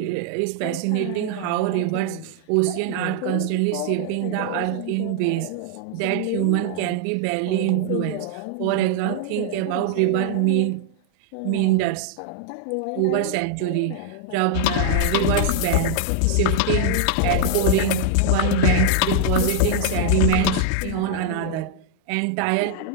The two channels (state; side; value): different; both; correlation -0.01